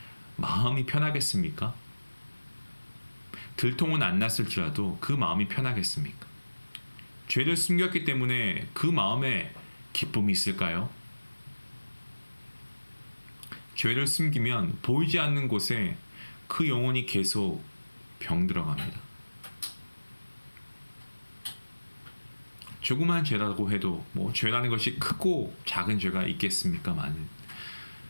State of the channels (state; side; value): inverted; both; correlation -1.00